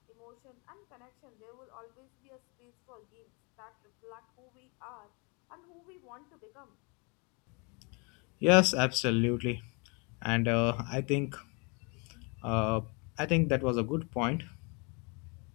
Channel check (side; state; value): right; quieter; 32.6 dB